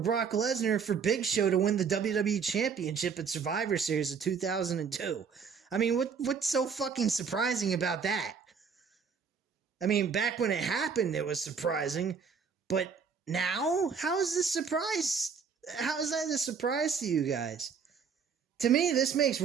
Lesnar for Big Show to win the WWE Championship at Survivor Series of 2002. I mean, what's so fucking surprising about that? I mean, back when it happened, it was surprising. But now? How is this surprise? How is that a surprise to you guys? To me, this makes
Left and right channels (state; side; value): quieter; left; 6.1 dB